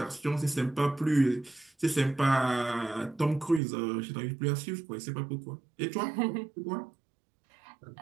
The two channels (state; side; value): drops out; left; at 3.6 s